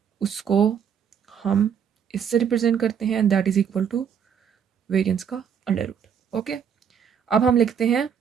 उसको हम इससे रिप्रेजेंट करते हैं, and that is equal to variance का अंडर रूट। ओके, अब हम लिखते हैं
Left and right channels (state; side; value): quieter; left; 7.7 dB